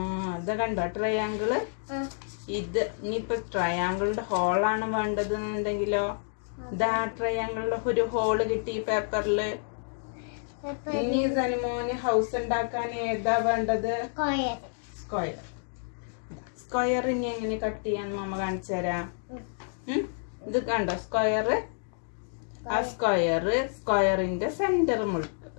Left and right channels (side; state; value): right; silent; digital silence